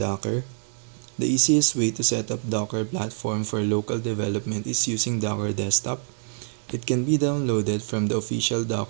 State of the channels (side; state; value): left; silent; digital silence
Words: The easiest way to set up Docker platform for local development is using Docker Desktop. It can be downloaded from the official